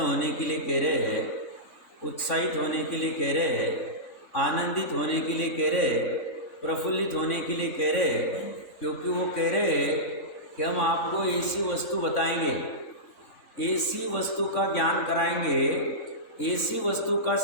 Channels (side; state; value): right; late; 3.6 ms